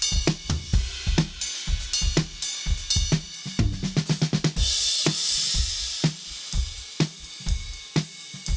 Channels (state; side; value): identical; both; correlation 1.00